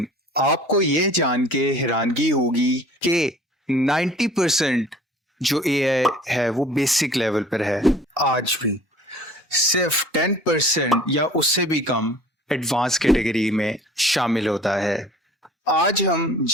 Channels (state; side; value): normal; both; correlation 0.49